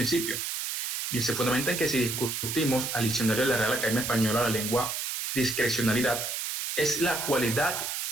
Bien, se fundamenta en que si discutimos al diccionario de la Real Academia Española la lengua, discrecionalidad es la cualidad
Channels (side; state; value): right; noise; hiss, 3 dB below the sound